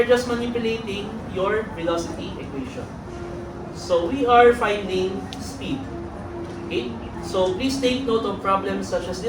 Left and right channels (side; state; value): both; identical; correlation 1.00